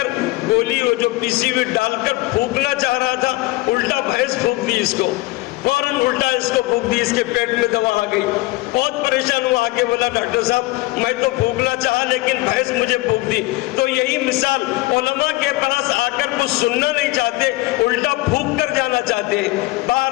गोली वो जो पीसी हुई डालकर फूंकना चाह रहा था, उल्टा भैंस फूंक दी इसको। फौरन उल्टा इसको फूंक दी, इसके पेट में दवा आ गई। बहुत परेशान हुआ, आके बोला डॉक्टर साहब मैं तो फूंकना चाहा लेकिन भैंस मुझे फूंक दी। तो यही मिसाल, उलमा के पास आकर कुछ सुनना नहीं चाहते, उल्टा फूंक कर जाना चाहते हैं,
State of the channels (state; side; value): quieter; right; 20.7 dB